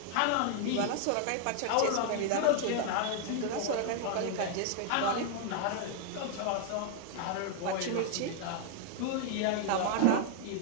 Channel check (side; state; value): both; different; correlation 0.00